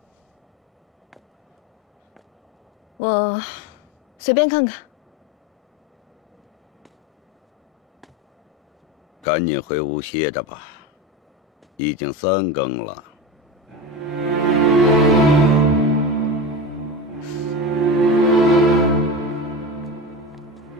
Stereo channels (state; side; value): normal; both; correlation 0.25